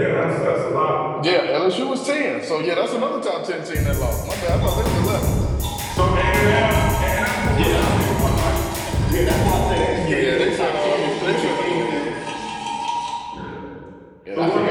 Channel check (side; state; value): both; identical; correlation 1.00